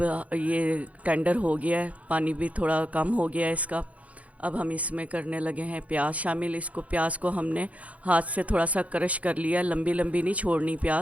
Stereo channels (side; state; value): left; late; 0.067 ms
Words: ये टेंडर हो गया है, पानी भी थोड़ा कम हो गया है इसका। अब हम इसमें करने लगे हैं प्याज शामिल। इसको प्याज को हमने हाथ से थोड़ा सा क्रश कर लिया, लंबी लंबी नहीं छोड़नी